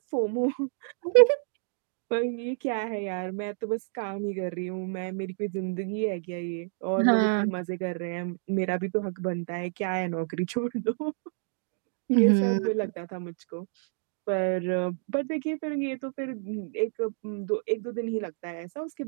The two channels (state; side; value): silent; left; digital silence